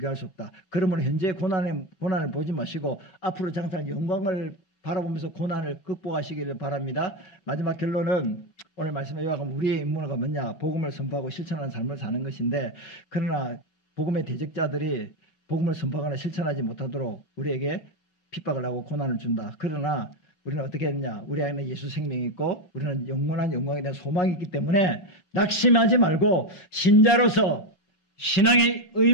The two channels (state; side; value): late; right; 6.0 ms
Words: 수 없다. 그러므로 현재의 고난을 보지 마시고 앞으로 장차 영광을 바라보면서 고난을 극복하시기를 바랍니다. 마지막 결론은 오늘 말씀에 요약하면 우리의 임무가 뭐냐? 복음을 선포하고 실천하는 삶을 사는 것인데 그러나 복음의 대적자들이 복음을 선포하거나 실천하지 못하도록 우리에게 핍박을 하고 고난을 준다. 그러나 우리는 어떻게 했냐? 우리 안에 예수 생명이 있고 우리는 영원한 영광에 대한 소망이 있기 때문에 낙심하지 말고 신자로서 신앙의